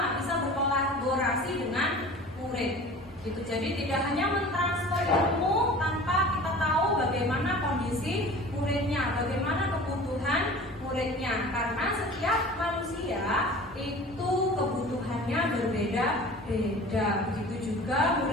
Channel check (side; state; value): both; normal; correlation 0.41